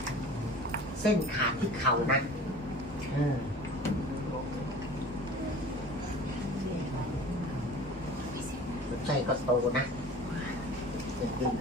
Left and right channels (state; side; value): normal; both; correlation 0.42